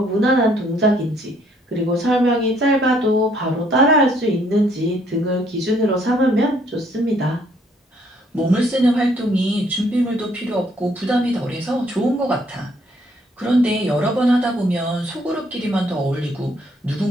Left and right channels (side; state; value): both; normal; correlation 0.66